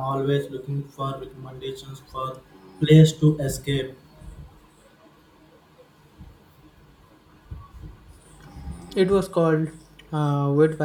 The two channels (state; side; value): identical; both; correlation 1.00